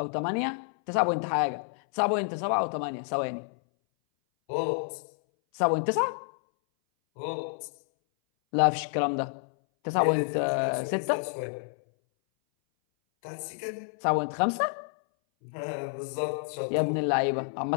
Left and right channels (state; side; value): silent; right; 58 dB below the other